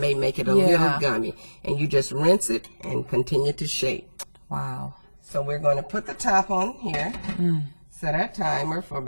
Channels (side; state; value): both; inverted; correlation -1.00